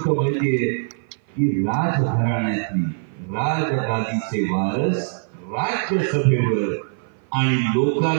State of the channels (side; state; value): left; silent; 55 dB below the other